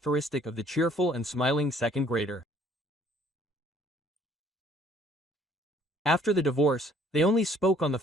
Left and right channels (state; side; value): normal; both; correlation 0.59